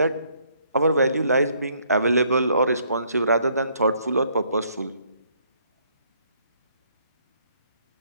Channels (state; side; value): inverted; both; correlation -0.67